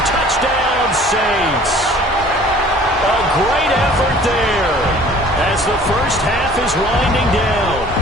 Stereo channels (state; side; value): normal; both; correlation 0.50